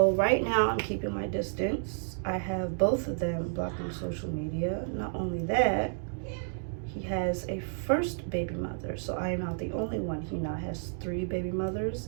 right now I'm keeping my distance. I have both of them blocked on social media. Not only that, he has a first baby mother. So I am not the only one. He now has 3 baby mothers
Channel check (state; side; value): silent; left; digital silence